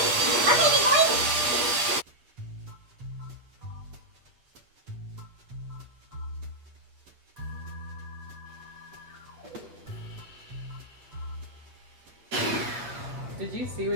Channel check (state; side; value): late; left; 8.3 ms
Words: Okay, big boy. Did you see